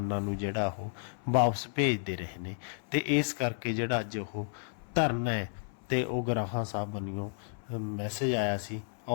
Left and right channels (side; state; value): right; silent; 56 dB below the other